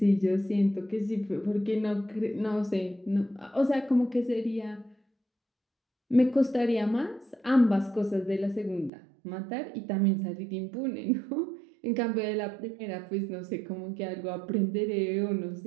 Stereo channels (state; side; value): drops out; left; at 8.9 s